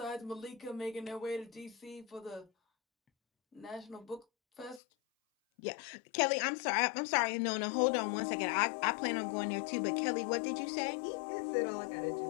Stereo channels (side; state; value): right; drops out; at 4.8 s